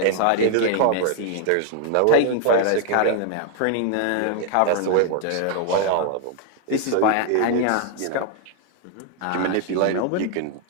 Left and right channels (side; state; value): both; different; correlation 0.00